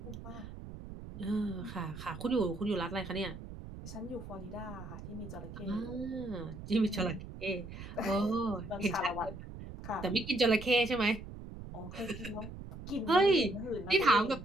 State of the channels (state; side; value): noise; right; rumble, 12 dB below the sound